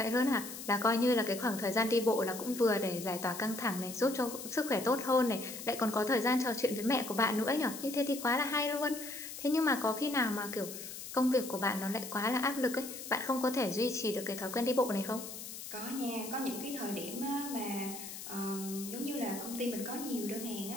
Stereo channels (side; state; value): left; noise; hiss, 10 dB below the sound